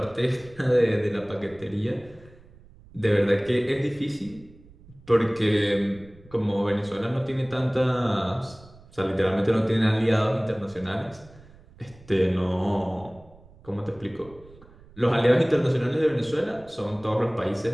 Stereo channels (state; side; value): noise; right; rumble, 24 dB below the sound